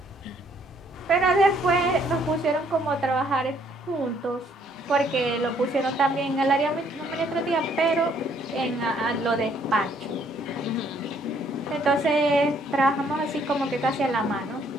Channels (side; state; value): both; normal; correlation 0.65